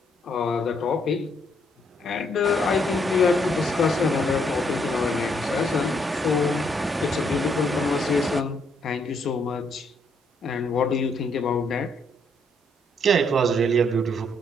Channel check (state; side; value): normal; both; correlation 0.72